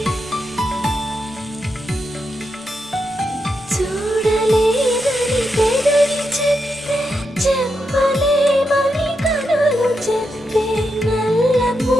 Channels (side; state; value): both; normal; correlation 0.84